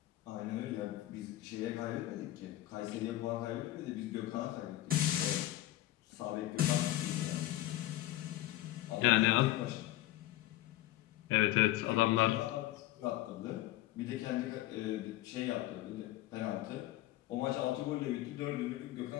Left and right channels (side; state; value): right; quieter; 15.7 dB